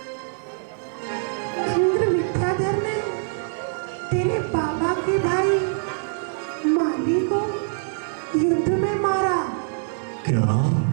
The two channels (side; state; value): left; silent; digital silence